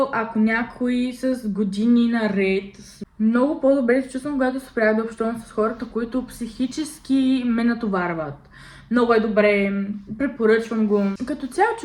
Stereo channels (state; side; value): identical; both; correlation 1.00